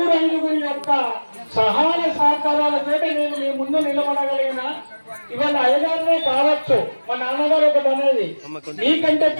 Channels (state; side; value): inverted; both; correlation -1.00